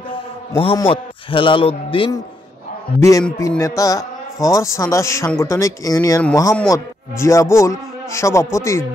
মোহাম্মদ হেলাল উদ্দিন বিএনপি নেতা ফর চাঁদা সাংগঠনিক ইউনিয়ন, মোহাম্মদ জিয়াবুল সভাপতি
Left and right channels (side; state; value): both; normal; correlation 0.79